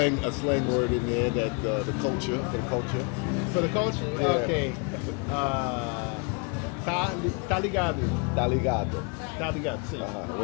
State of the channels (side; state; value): right; quieter; 34.0 dB